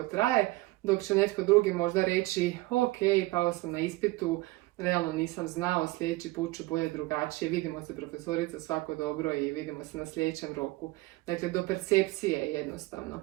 traje, dok će netko drugi možda reći ok, pao sam na ispitu, realno nisam znao, sljedeći put ću bolje drugačije, vidimo se profesorica, svako dobro i vidimo se na sljedećem roku. Dakle, do percepcije je jednostavno.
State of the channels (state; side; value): quieter; left; 20.8 dB